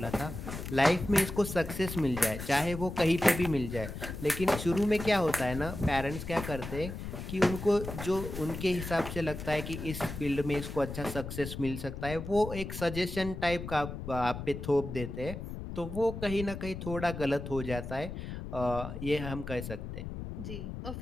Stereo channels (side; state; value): left; noise; rumble, 8 dB below the sound